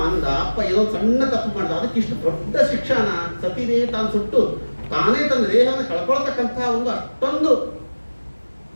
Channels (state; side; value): inverted; both; correlation -1.00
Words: ಅಂದ, ಅಪ್ಪ ಏನೋ ಸಣ್ಣ ತಪ್ಪು ಮಾಡ್ದ, ಅದಕ್ಕೆ ಇಷ್ಟು ದೊಡ್ಡ ಶಿಕ್ಷಣ ಸತಿದೇವಿ ತಾನು ಸುಟ್ಟು ತಾನೇ ತನ್ನ ದೇಹವನ್ನು ಕಳ್ಕೊಳ್ತಕ್ಕಂತಹ ಒಂದು ಅಷ್ಟೊಂದು